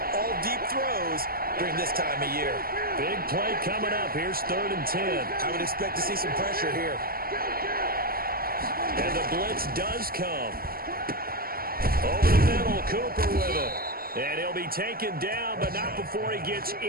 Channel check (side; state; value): left; late; 0.43 ms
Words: all deep throws during this time of year. Big play coming up. Here's 3rd and 10. I would expect to see some pressure here. And the blitz does come. Over the middle, Cooper with it. And he'll be taken down, but not before he gets